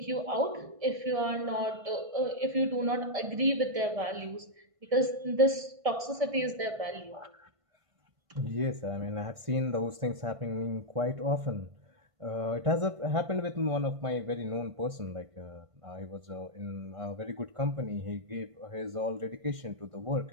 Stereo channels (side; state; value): left; late; 1.5 ms